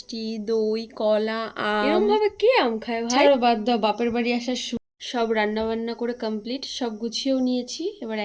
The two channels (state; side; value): identical; both; correlation 1.00